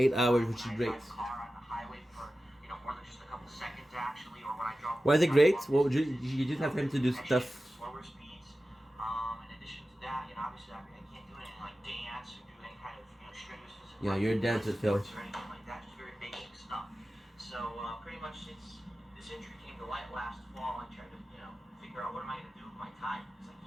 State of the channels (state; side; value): normal; both; correlation 0.94